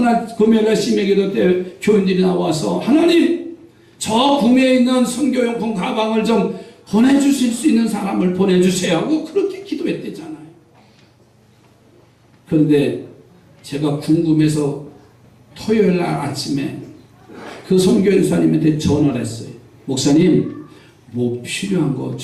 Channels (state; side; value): identical; both; correlation 1.00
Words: 금요일날 심야기도 때 교인들이 나와서 하나님, 저 구미에 있는 선교용품 가방을 좀 보내주실 수 있는 사람을 보내주세요 하고 그렇게 기도했대잖아요. 그런데 제가 궁금해서 토요일날 아침에 그 선교연수님한테 전화를 했어요. 목사님, 뭐 필요한 거